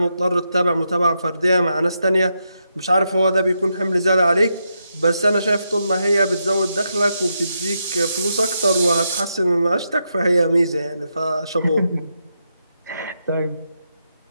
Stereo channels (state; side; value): inverted; both; correlation -0.83